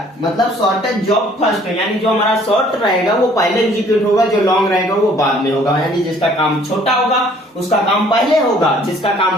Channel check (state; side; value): normal; both; correlation 0.57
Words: मतलब शॉर्टेज जॉब फर्स्ट है, यानी जो हमारा शॉर्ट रहेगा वो पहले एग्जीक्यूट होगा, जो लॉन्ग रहेगा वो बाद में होगा। यानी जिसका काम छोटा होगा उसका काम पहले होगा, जिसका